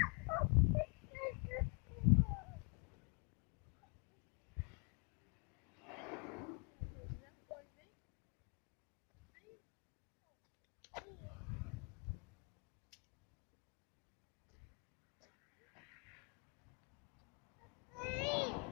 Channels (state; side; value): quieter; right; 37.2 dB